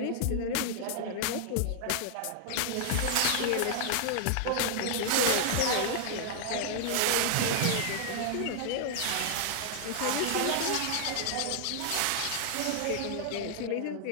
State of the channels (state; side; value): different; both; correlation -0.01